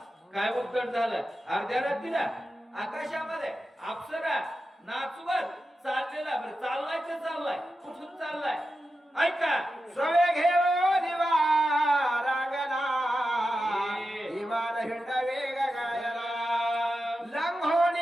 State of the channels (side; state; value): both; normal; correlation 0.90